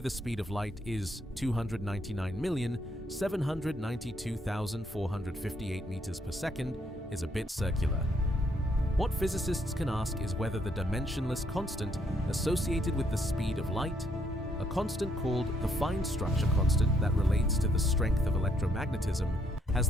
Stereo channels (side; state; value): both; normal; correlation 0.71